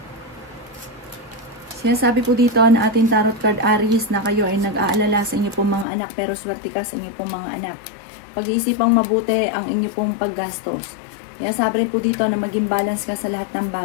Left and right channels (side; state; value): right; drops out; at 5.9 s